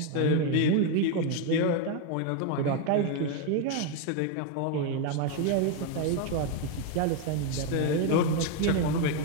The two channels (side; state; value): both; different; correlation 0.01